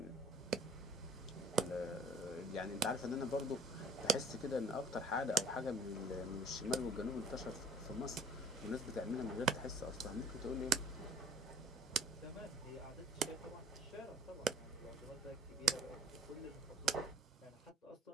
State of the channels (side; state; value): both; normal; correlation 0.53